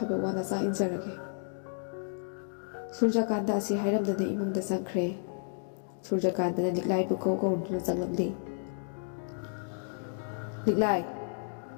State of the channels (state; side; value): silent; right; digital silence